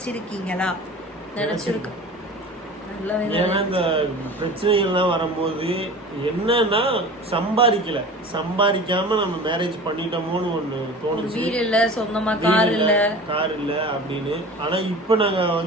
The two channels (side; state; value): both; normal; correlation 0.38